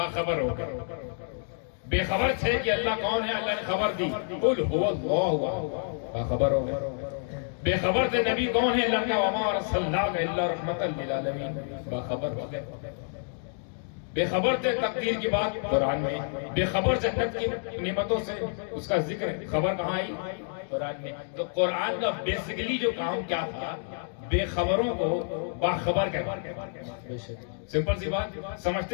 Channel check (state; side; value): silent; right; digital silence